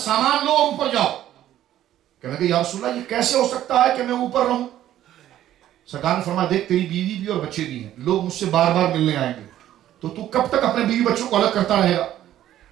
لو اور اوپر جاؤ۔ کہنے کہ یا رسول اللہ یہ کیسے ہو سکتا ہے کہ میں اوپر رہوں؟ سرکار نے فرمایا دیکھ تیری بیوی بھی اور بچے بھی ہیں، لوگ مجھ سے بار بار ملنے آئیں گے، تو کب تک اپنے بیوی بچوں کو الگ کرتا رہے گا؟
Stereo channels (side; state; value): left; quieter; 12.4 dB